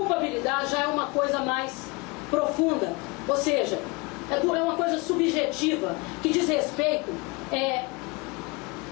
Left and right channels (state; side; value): quieter; right; 27.2 dB